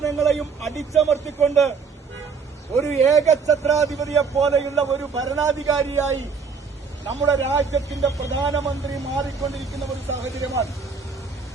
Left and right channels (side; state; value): left; quieter; 5.3 dB